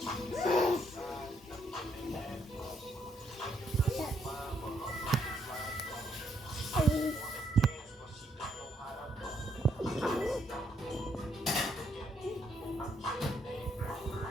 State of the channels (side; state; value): both; normal; correlation 0.73